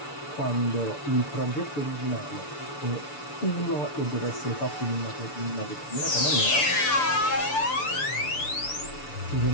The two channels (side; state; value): right; late; 6.9 ms